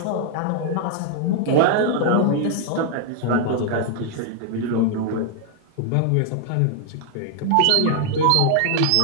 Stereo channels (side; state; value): both; different; correlation 0.00